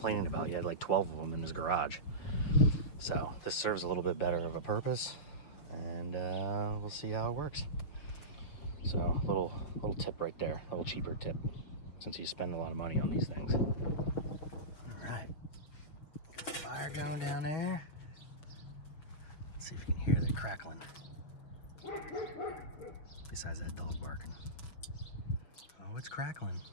about. He had like 12 of them in his garage. So this serves a little bit better of a purpose, and we'll see how it works. So little tip right there, a little cheaper tip, since you spend a lot of money on these things. All right, got the fire going down there. Let's see if you can hear the crackling. Besides that dog barking. Oh, it's crackling.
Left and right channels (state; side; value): late; right; 6.6 ms